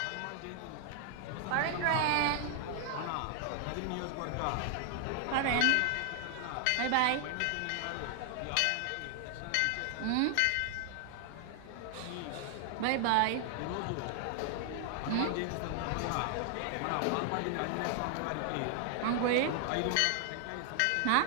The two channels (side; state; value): both; different; correlation 0.00